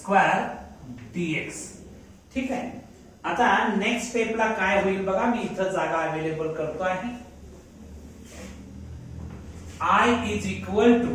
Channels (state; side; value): identical; both; correlation 1.00